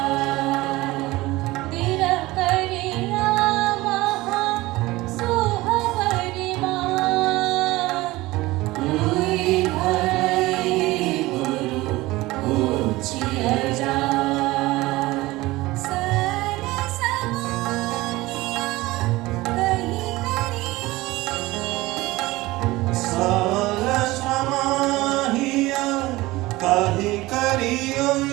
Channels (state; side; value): quieter; left; 19.5 dB